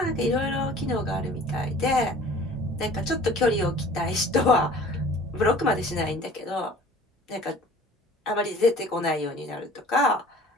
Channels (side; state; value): both; normal; correlation 0.47